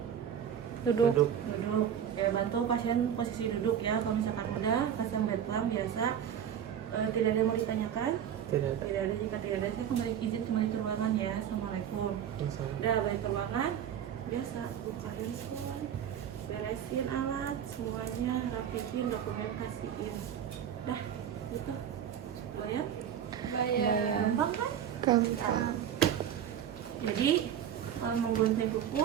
Duduk. Duduk. Duduk. Ya, bantu pasien posisi duduk ya. Kalau misalkan udah, pasang bed plan biasa. Tidak ada yang mau ditanyakan? Tidak ada. Tidak ada. Jika tidak ada, saya izin kembali ke ruangan ya. Assalamualaikum. Masalah. Udah balik ke ruangan. Biasa buka handphone, beresin alat, semuanya rapiin, dokumen kasihin. Nah, gitu. Bayar? Bayar. Gampang kan? Gampang. Jadi menggunting kuku,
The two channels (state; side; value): quieter; left; 9.3 dB